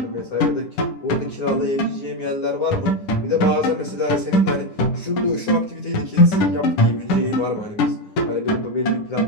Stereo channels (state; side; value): late; right; 9.7 ms